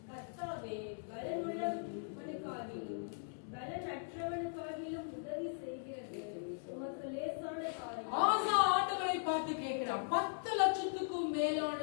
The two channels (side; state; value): right; silent; digital silence